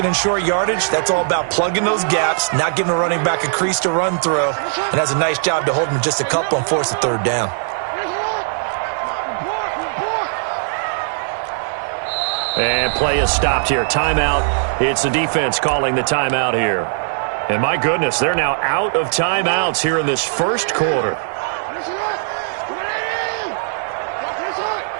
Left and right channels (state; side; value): silent; left; digital silence